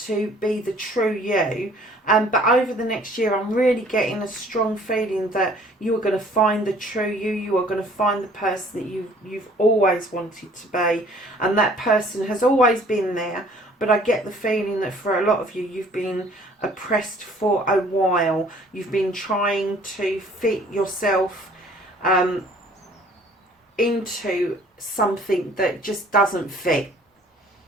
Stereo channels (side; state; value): both; normal; correlation 0.55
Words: to be the true you. But over the next year, I'm really getting a strong feeling that you are going to find the true you. You are going to find the person that you've always wanted to be. And that person has always been there. But I get the feeling that for a lot of you, you've been oppressed for a while. You've been trying to fit yourself into something that just doesn't fit.